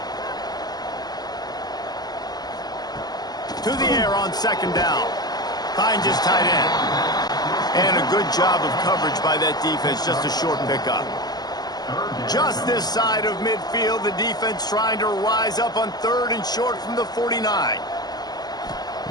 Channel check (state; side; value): late; right; 0.20 ms